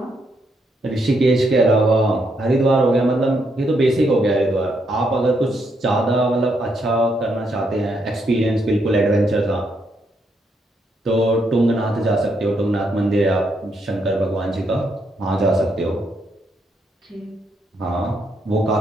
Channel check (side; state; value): both; normal; correlation 0.77